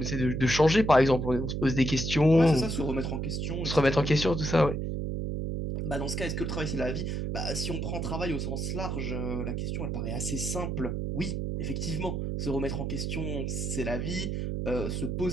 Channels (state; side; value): noise; right; hum, 2 dB below the sound